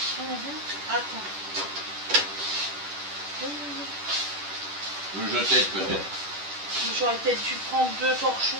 Attends. Je t'aide peut-être. J'aurais peut-être dû prendre 2 torchons.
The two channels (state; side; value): late; left; 10 ms